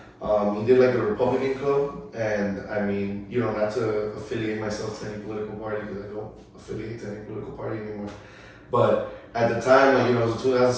he did like the Republican Club, and I mean, not to affiliate myself to any political party because I don't affiliate to any political party anymore. But at the time, like, it was a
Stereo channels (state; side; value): identical; both; correlation 1.00